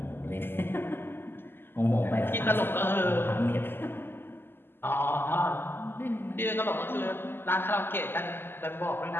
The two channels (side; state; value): right; late; 0.10 ms